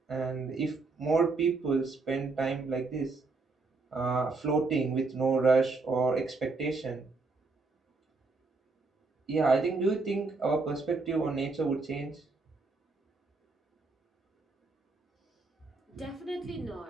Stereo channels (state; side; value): quieter; left; 3.8 dB